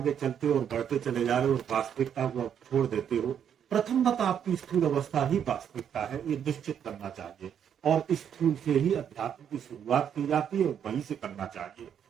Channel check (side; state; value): left; quieter; 8.6 dB